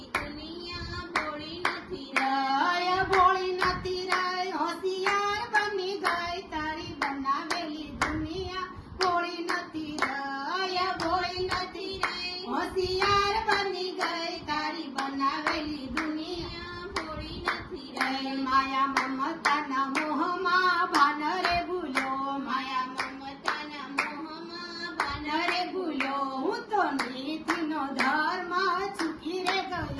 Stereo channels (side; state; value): both; identical; correlation 1.00